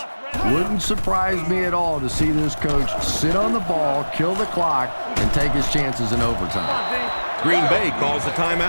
wouldn't surprise me at all to see this coach sit on the ball, kill the clock, and take his chances in overtime. Green Bay calls a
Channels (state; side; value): inverted; both; correlation -1.00